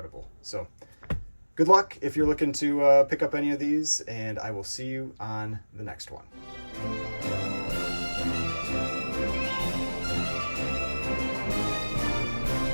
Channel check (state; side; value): inverted; both; correlation -1.00